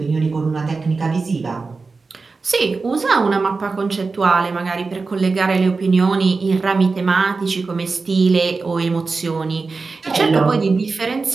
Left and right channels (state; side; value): quieter; left; 4.2 dB